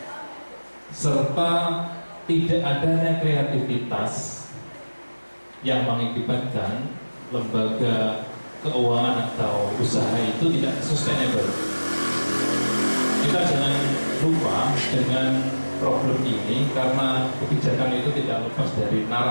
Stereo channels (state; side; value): inverted; both; correlation -1.00